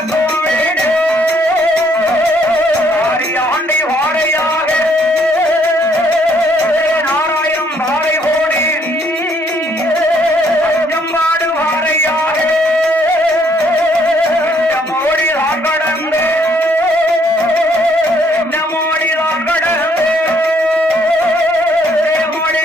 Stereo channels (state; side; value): normal; both; correlation 0.67